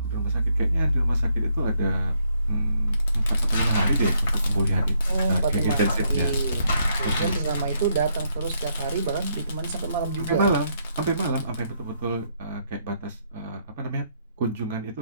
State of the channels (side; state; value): both; inverted; correlation -0.74